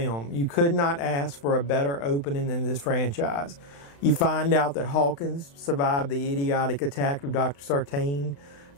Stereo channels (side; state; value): right; late; 35 ms